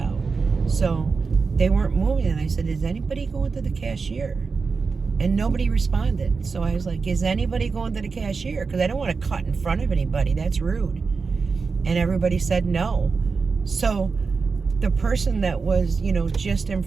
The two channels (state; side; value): quieter; left; 4.8 dB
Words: so they weren't moving. And I said, is anybody going to the cashier? And nobody responded. So I was like, is anybody going to the cashier? Because I don't want to cut in front of anybody. That's rude. And everybody said no. So the person that was, you know, just in